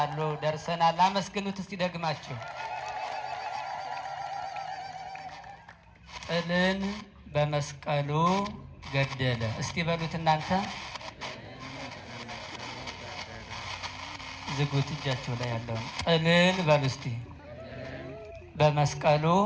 ደርሰናል። አመስግኑት እስቲ ደግማችሁ። ጥልን በመስቀሉ ገደለ። እስቲ በሉት እናንተ። ዝጉት እጃችሁ ላይ ያለውን ጥልን በሉ እስቲ። በመስቀሉ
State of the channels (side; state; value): both; identical; correlation 1.00